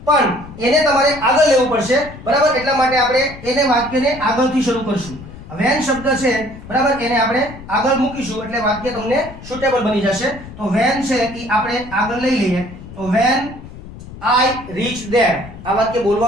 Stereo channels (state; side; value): noise; left; rumble, 15 dB below the sound